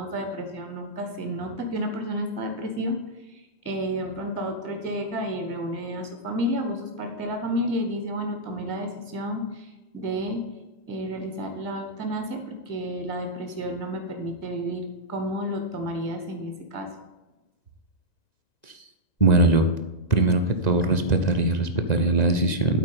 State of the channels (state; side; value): late; right; 1.9 ms